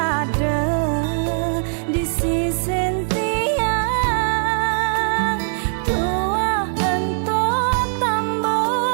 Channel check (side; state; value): left; silent; 65 dB below the other